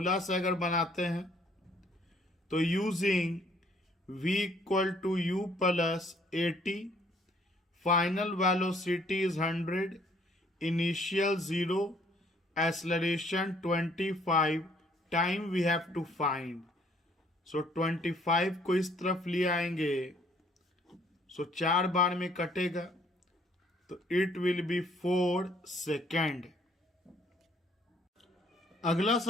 से अगर बनाते हैं, तो using v equal to u plus 80, final velocity is 100, initial 0, acceleration 25, time we have to find. So 25 को इस तरफ ले आएंगे, सो 4 बार में कटेगा, तो इट विल बी 4 सेकेंड। अगला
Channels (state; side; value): normal; both; correlation 0.63